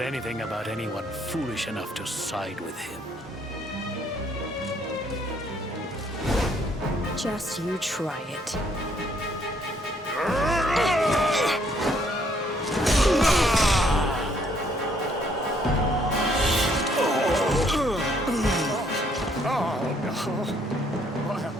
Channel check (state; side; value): normal; both; correlation 0.67